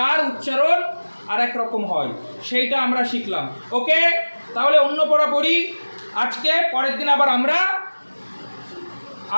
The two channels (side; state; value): both; inverted; correlation -1.00